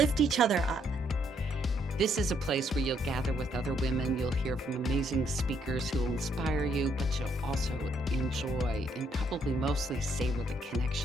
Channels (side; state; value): both; normal; correlation 0.71